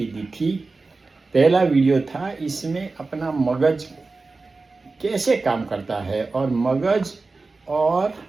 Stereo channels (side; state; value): left; quieter; 3.8 dB